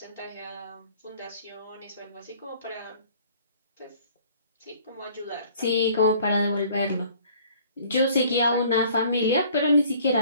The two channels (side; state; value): both; inverted; correlation -0.55